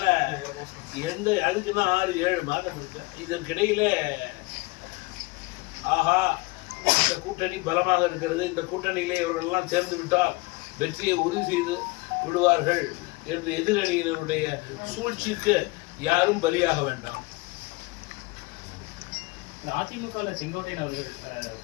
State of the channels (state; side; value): quieter; right; 24.6 dB